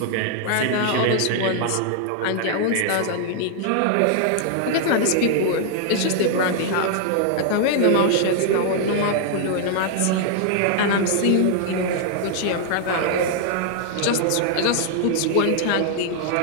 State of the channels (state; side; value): different; both; correlation -0.01